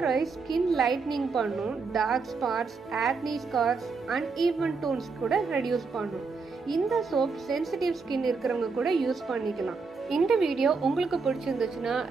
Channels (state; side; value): quieter; left; 4.6 dB